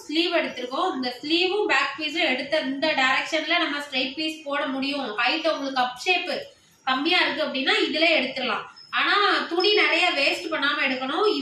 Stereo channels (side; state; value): both; identical; correlation 1.00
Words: ஸ்லீவ் எடுத்திருக்கோம். இந்த ஸ்லீவும் பேக் பீஸும் எடுத்த இந்த டைரக்ஷன்ல நம்ம ஸ்ட்ரைட் பீஸ் போட முடியும். ஹைட் உங்களுக்கு அப் ஷேப் கம்மியா இருக்கு அப்படின்னா இதுல எடுத்துடலாம். ஆனா துணி நிறைய வேஸ்ட் பண்ணாம எடுக்கணும்.